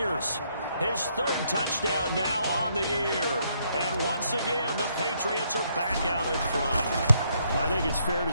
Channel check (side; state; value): both; inverted; correlation -0.72